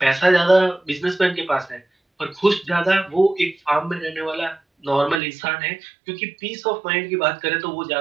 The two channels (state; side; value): drops out; left; at 5.2 s